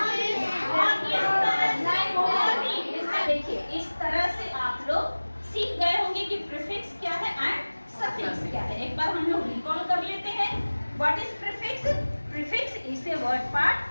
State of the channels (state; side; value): inverted; both; correlation -1.00